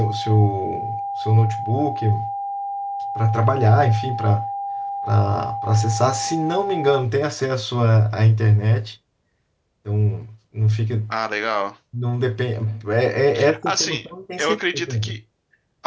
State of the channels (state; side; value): identical; both; correlation 1.00